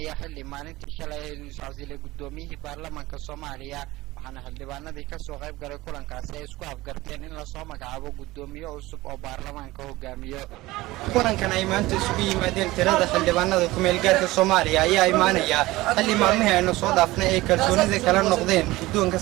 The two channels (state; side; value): quieter; left; 19.0 dB